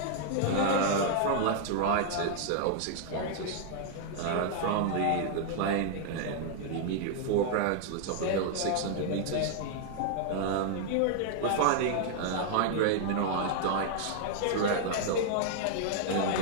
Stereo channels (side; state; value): both; different; correlation -0.01